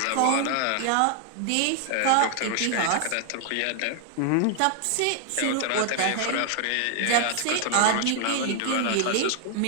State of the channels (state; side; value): different; both; correlation 0.00